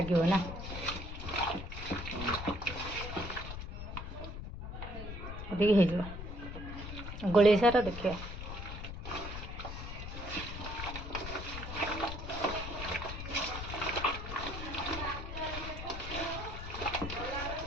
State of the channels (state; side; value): noise; left; rumble, 7 dB below the sound